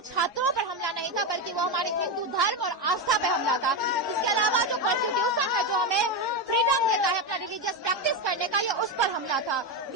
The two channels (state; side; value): normal; both; correlation 0.11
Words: छात्रों पर हमला नहीं था, बल्कि वो हमारे हिंदू धर्म और आस्था पे हमला था। इसके अलावा जो कॉन्स्टिट्यूशन है, जो हमें फ्रीडम देता है अपना रिलीजियस प्रैक्टिस करने का, ये उस पर हमला था।